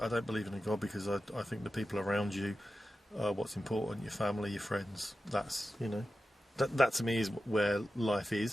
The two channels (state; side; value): normal; both; correlation 0.93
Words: believe in a God, because I think the people around you are what's important. Your family, your friends. That's that to me is where life